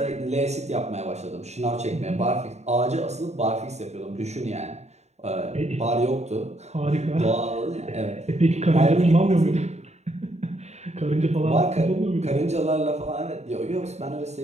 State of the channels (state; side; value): late; left; 0.32 ms